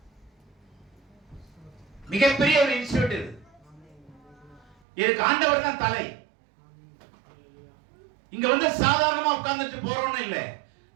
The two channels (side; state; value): left; drops out; at 4.8 s